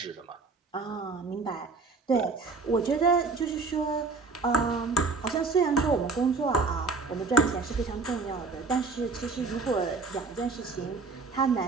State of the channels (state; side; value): quieter; left; 4.1 dB